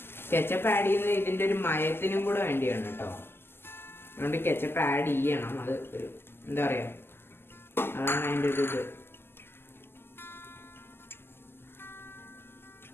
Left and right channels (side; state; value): right; late; 0.11 ms